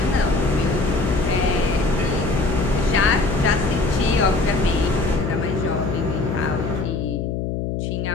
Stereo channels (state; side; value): noise; left; hum, 2 dB below the sound